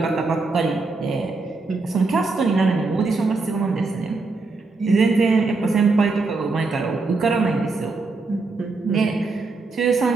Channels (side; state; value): left; quieter; 3.8 dB